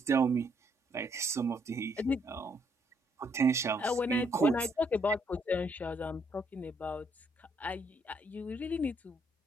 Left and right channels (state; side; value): normal; both; correlation 0.71